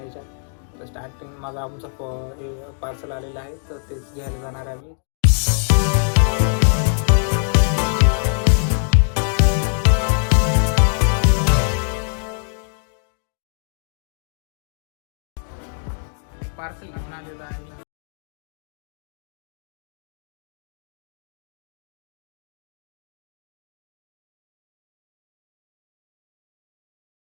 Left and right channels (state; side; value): silent; right; 63 dB below the other